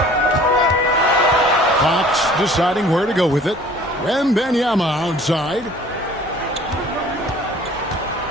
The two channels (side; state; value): both; normal; correlation 0.50